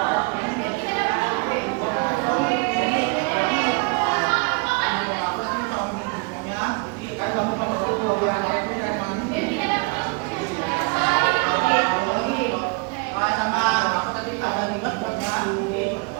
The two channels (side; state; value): left; quieter; 30.6 dB